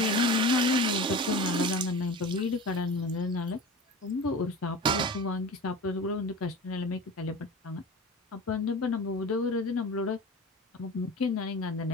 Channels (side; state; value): both; normal; correlation 0.34